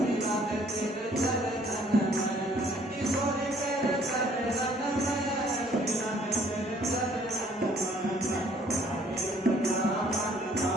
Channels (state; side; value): normal; both; correlation 0.60